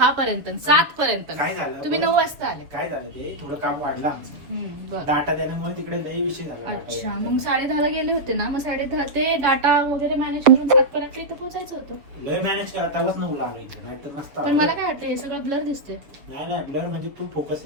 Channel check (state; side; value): late; left; 7.0 ms